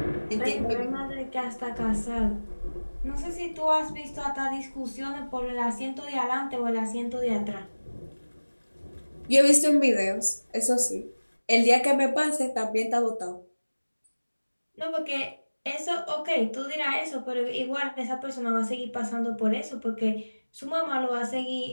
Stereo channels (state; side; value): inverted; both; correlation -1.00